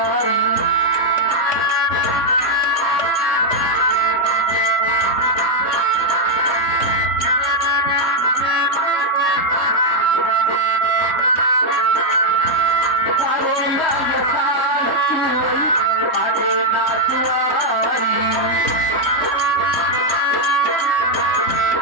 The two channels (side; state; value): right; late; 3.1 ms